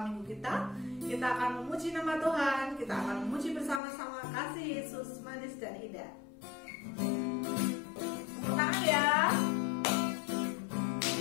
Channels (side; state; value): right; drops out; at 3.8 s